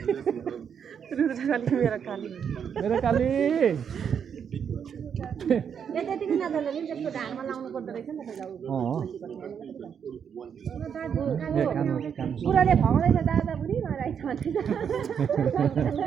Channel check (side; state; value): left; quieter; 7.6 dB